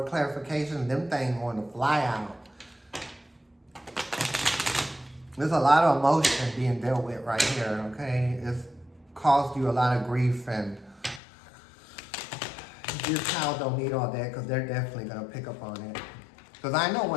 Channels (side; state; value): right; drops out; at 11.2 s